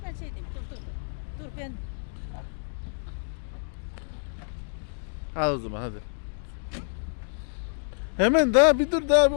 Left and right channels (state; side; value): silent; right; digital silence